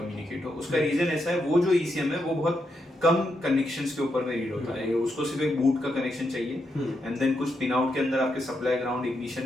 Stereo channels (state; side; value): normal; both; correlation 0.82